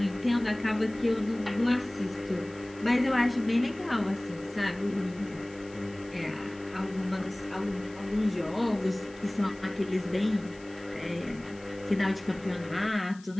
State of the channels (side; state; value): left; noise; hiss, 24 dB below the sound